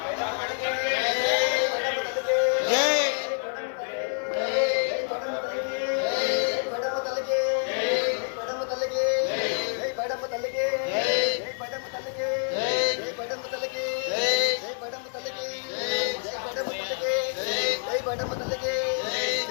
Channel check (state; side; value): silent; right; 60 dB below the other